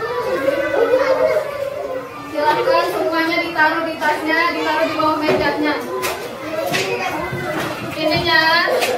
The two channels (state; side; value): identical; both; correlation 1.00